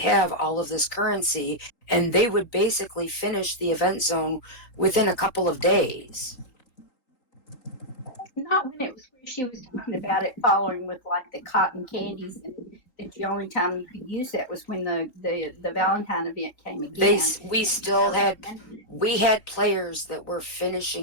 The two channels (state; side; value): late; right; 3.8 ms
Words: all of this currency and they would basically finish the event zone within a couple of days. Not when it was where she was talking about it following with like the cotton candies, and that the only time you could use that was when the Valentine event came again. We had players that were